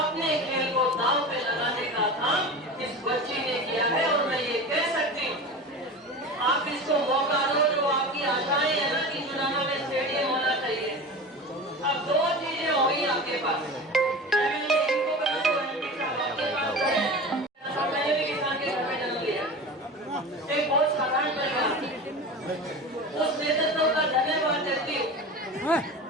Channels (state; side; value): normal; both; correlation 0.31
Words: खेल को दांव पे लगाने का काम इस बच्ची ने किया है। और मैं ये कह सकती हूँ, आप इसको मौका दो। जो आपकी आशाएं है ना कि जुलाना में स्टेडियम होना चाहिए, अब दो चीजें होगी आपके पास। इनको करो तो ओलंपिक का आपके पास है। मैंने भी किसान के घर में जन्म लिया, एक बहुत साधारण परिवार, उस नेतृत्व का धन्यवाद देती हूँ।